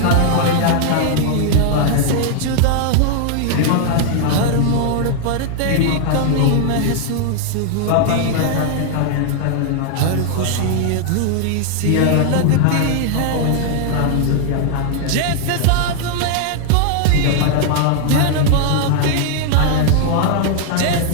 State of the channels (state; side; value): different; both; correlation 0.00